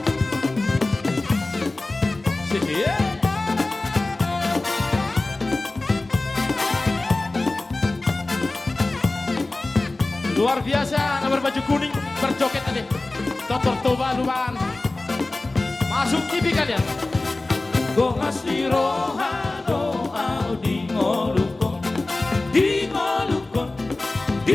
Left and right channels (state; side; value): quieter; right; 3.0 dB